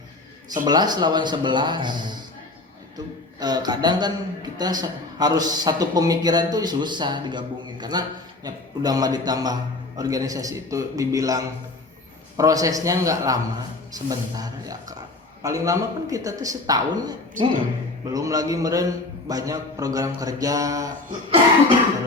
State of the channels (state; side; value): quieter; right; 3.1 dB